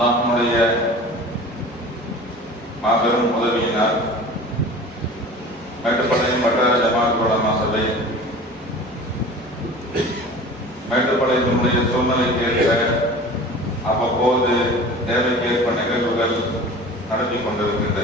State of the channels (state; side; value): normal; both; correlation 0.40